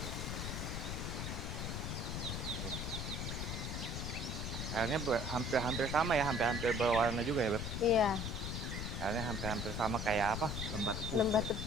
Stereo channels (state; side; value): noise; left; rumble, 3 dB below the sound